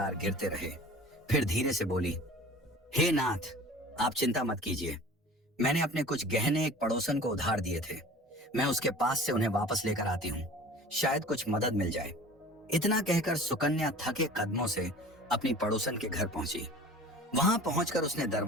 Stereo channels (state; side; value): normal; both; correlation 0.42